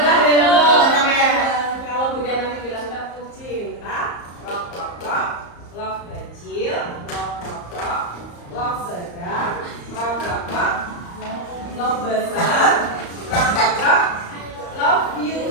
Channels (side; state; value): right; late; 34 ms